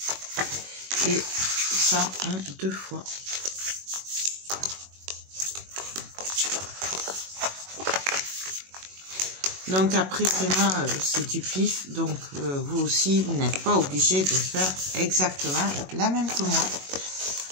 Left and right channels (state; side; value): late; left; 21 ms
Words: Et ça en 2 fois. Donc après, vraiment, c'est du pif. Donc vous aussi, vous n'êtes pas obligé de faire exactement la même que moi.